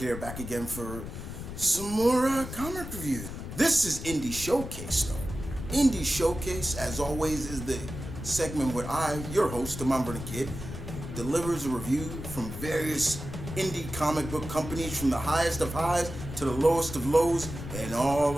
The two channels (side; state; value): left; noise; rumble, 9 dB below the sound